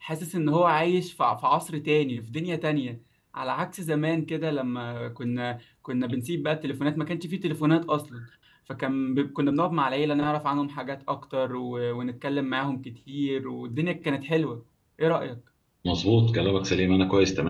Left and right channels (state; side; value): identical; both; correlation 1.00